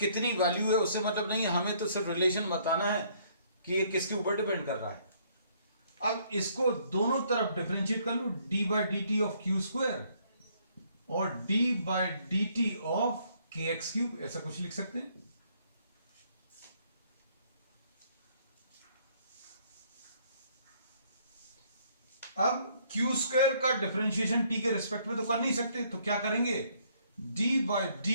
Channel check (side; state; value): both; inverted; correlation -0.65